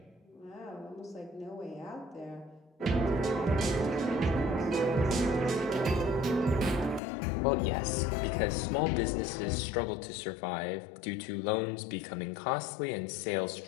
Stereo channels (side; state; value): right; drops out; at 7.0 s